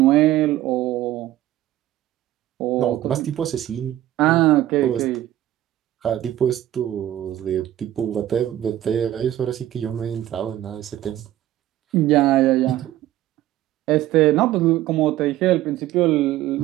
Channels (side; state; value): left; quieter; 13.8 dB